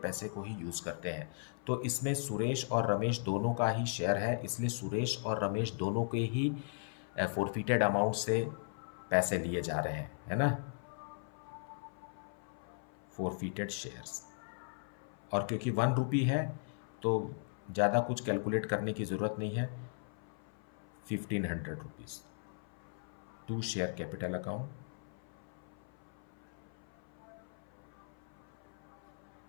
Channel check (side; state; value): right; silent; 53 dB below the other